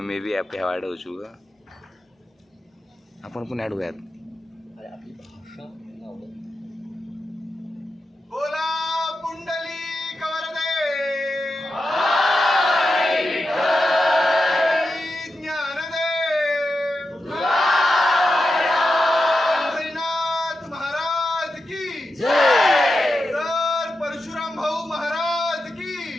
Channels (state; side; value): normal; both; correlation 0.89